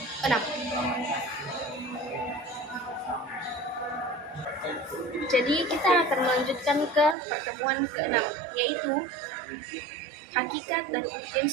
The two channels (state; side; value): drops out; left; at 7.2 s